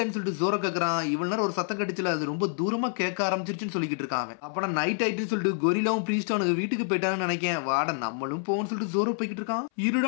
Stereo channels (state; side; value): silent; right; 60 dB below the other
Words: சொல்லிட்டு ஜோரோ கேக்குறான். இவ்வளவு நேரம் ஒரு சத்தம் கடிச்சல, அது ரொம்ப தூரமா கேட்க ஆரம்பிச்சிருச்சுன்னு சொல்லிக்கிட்டு இருக்கான். அப்ப நைட் ஆயிட்டுன்னு சொல்லிட்டு கொரிலாவும் பிரீஸ்டும் அவனுக்கு வீட்டுக்கு போயிட்டான்னு நினைக்கேன். வாட நம்மளும் போன்னு சொல்லிட்டு ஜோரோ போய்கிட்டு இருக்கான்.